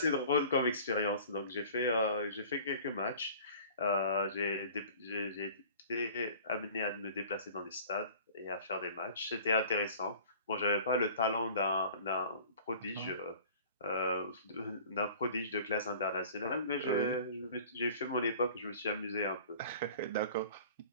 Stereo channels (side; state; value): both; inverted; correlation -0.46